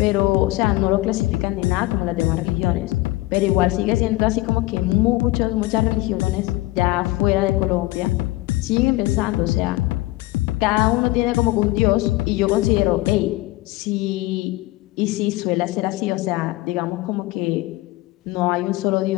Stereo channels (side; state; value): right; quieter; 19.7 dB